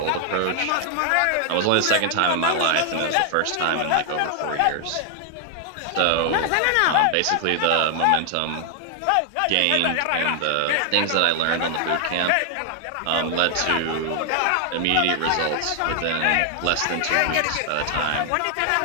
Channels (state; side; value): different; both; correlation 0.00